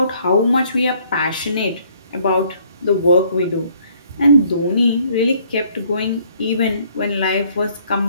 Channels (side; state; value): both; inverted; correlation -0.63